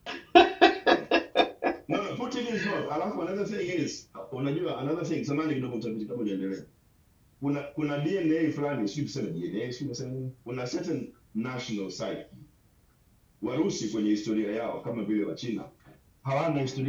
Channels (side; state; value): both; identical; correlation 1.00